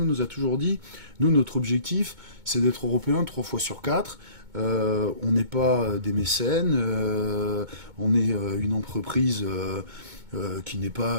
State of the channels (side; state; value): left; late; 2.2 ms